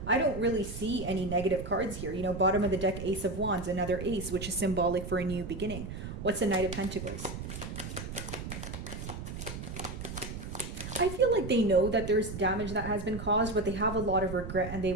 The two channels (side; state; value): right; noise; rumble, 8 dB below the sound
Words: I don't really see any negative cards here. You know, bottom of the deck, Ace of Wands, another ace, which is symbolic for a new beginning. What's the Knight of Pentacles? I feel like they know that there's damage that has been caused, but they have a lot of regret and they